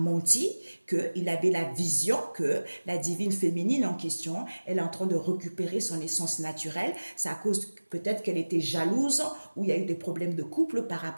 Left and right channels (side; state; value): both; inverted; correlation -1.00